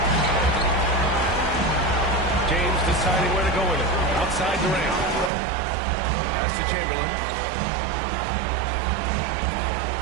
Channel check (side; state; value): left; drops out; at 5.3 s